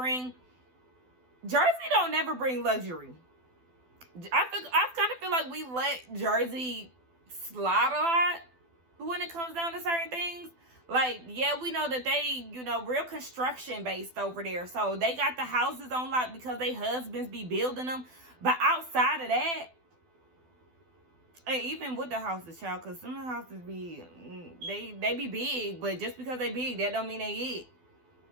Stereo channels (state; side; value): late; left; 12 ms